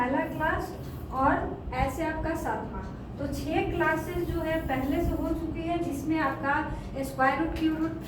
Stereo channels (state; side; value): identical; both; correlation 1.00